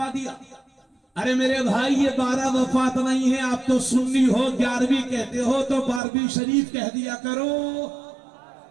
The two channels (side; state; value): left; drops out; at 6.0 s